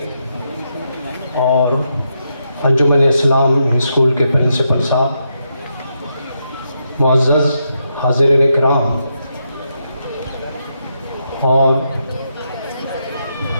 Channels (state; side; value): inverted; both; correlation -0.82